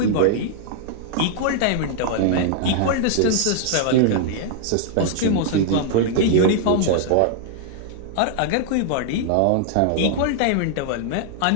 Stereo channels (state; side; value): different; both; correlation -0.01